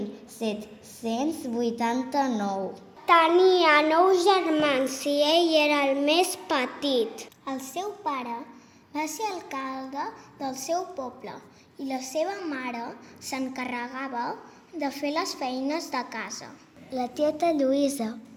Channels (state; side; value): identical; both; correlation 1.00